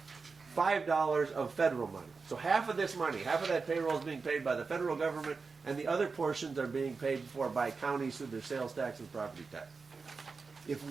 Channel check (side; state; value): left; quieter; 4.6 dB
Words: $5 of federal money. So half of this money, half of that payroll is being paid by the federal government, and the other portions are being paid for by counties through their sales tax and property tax. If